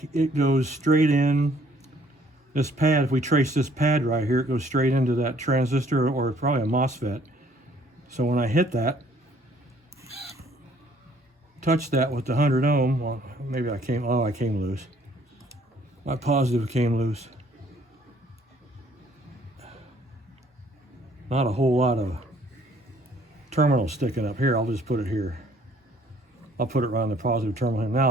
it goes straight in this pad. If we trace this pad right here, it goes straight into that transistor, or probably a MOSFET. So when I hit that, touch that with the 100 ohm, well, maybe I came loose. My positive came loose. Not a whole lot of terminal sticking up here. I'll just put it here. I'll put it around the positive terminal. Now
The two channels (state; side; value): normal; both; correlation 0.61